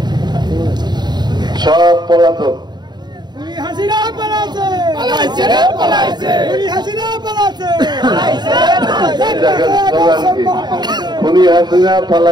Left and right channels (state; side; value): late; left; 0.21 ms